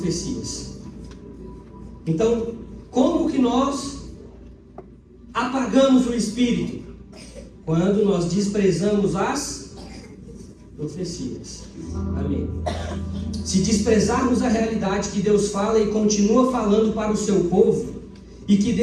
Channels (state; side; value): identical; both; correlation 1.00